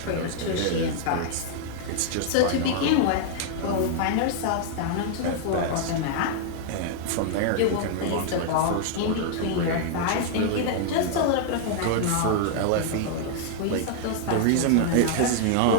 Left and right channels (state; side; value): different; both; correlation 0.00